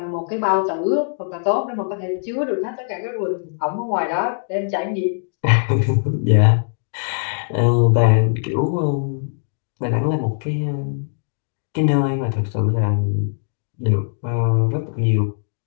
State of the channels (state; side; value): silent; right; digital silence